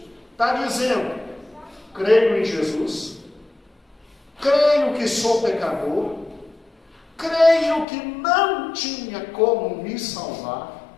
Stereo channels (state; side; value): drops out; right; at 7.9 s